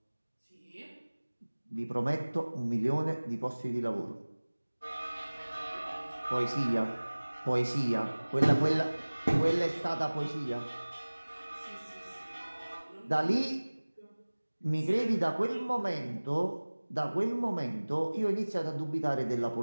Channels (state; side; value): inverted; both; correlation -1.00